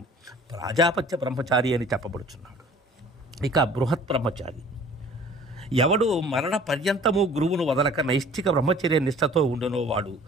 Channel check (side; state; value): both; normal; correlation 0.50